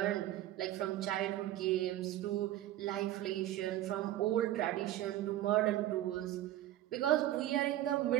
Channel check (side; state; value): left; quieter; 14.1 dB